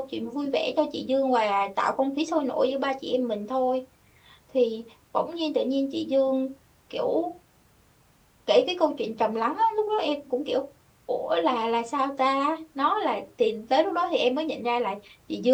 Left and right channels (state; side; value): identical; both; correlation 1.00